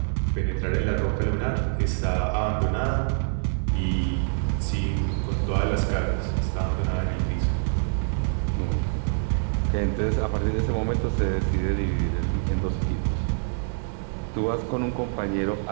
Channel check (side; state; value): left; silent; 56 dB below the other